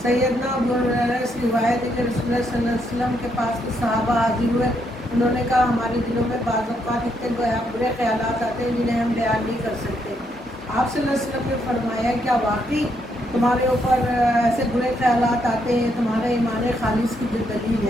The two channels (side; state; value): both; normal; correlation 0.76